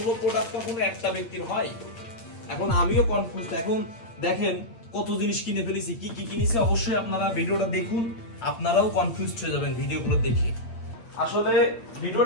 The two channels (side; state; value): right; late; 8.7 ms